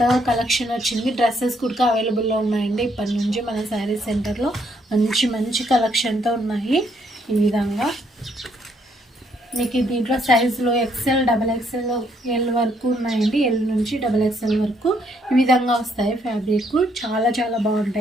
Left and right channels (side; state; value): both; normal; correlation 0.71